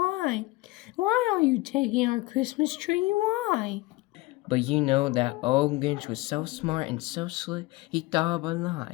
Why are you taking our Christmas tree? Why? But you know that old Grinch was so smart and so slick, he thought of a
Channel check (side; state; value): right; quieter; 21.0 dB